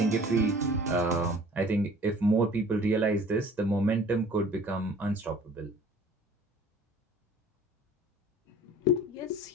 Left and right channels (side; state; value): both; normal; correlation 0.50